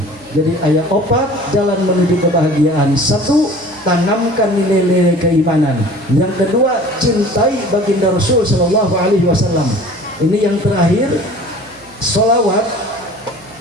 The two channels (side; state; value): right; noise; hum, 27 dB below the sound